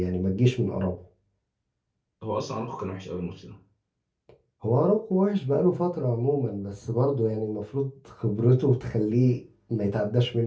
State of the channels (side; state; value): both; identical; correlation 1.00